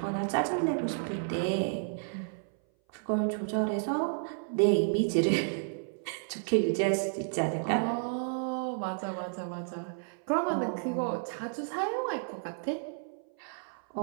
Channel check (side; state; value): left; silent; 57 dB below the other